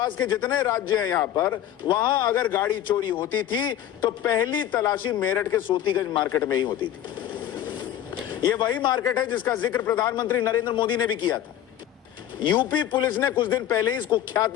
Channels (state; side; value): quieter; right; 11.2 dB